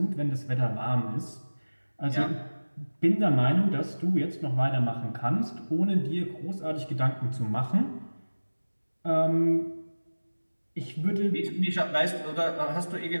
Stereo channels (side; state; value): both; inverted; correlation -1.00